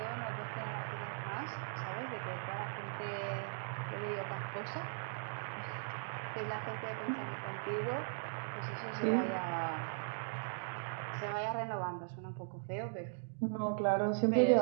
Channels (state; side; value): silent; left; digital silence